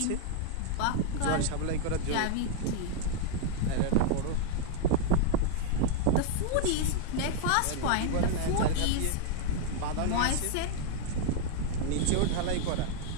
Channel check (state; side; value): different; both; correlation 0.00